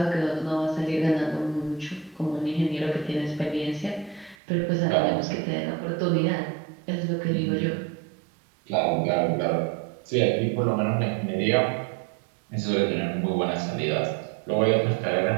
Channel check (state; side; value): drops out; left; at 4.4 s